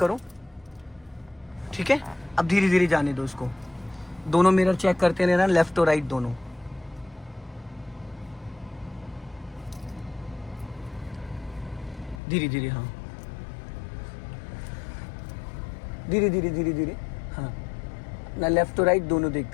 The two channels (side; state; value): right; drops out; at 12.2 s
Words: ठीक है, अब धीरे धीरे जाने दो उसको। दोनों मिरर चेक करते रहना, लेफ्ट और राइट दोनों। धीरे धीरे, हाँ, धीरे धीरे धीरे धीरे, हाँ ना, लेफ्ट और राइट दोनों